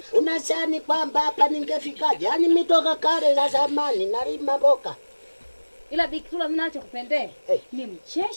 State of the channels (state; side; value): inverted; both; correlation -1.00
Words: Unasani kwamba hapa ningefikaje? Yaani mitoka kale za zamani nalima mboga. Ila Bikitulo mimi nachokupendea ni